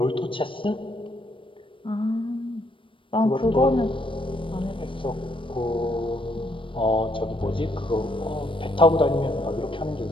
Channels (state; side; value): late; right; 0.25 ms